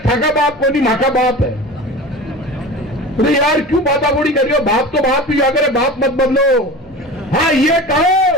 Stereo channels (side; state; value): both; normal; correlation 0.34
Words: थाका बाप को नहीं माका बाप है। तो यार क्यों बातागोड़ी कर रही हो, बाप तो बाप ही अगर बाप मत बदलो। हाँ ये